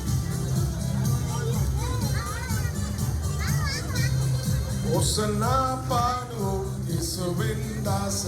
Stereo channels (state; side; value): identical; both; correlation 1.00